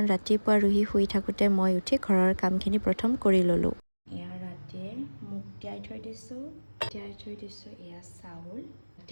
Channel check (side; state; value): both; inverted; correlation -1.00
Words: ৰাতিপুৱা ৰুহি শুই থাকোঁতে মই উঠি ঘৰৰ কামখিনি প্ৰথম কৰি ল'লোঁ। এয়া ৰাতিয়ে মুগ তিয়াই থৈ দিছোঁ, এয়া চাউল,